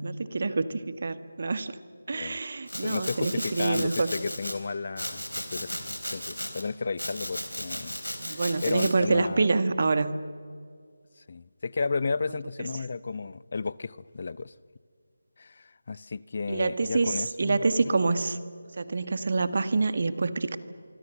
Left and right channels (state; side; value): inverted; both; correlation -0.92